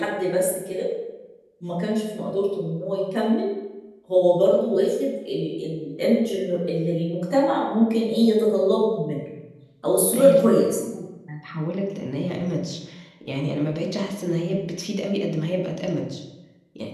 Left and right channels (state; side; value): identical; both; correlation 1.00